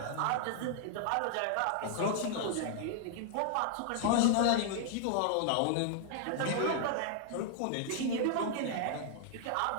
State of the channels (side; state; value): both; different; correlation 0.00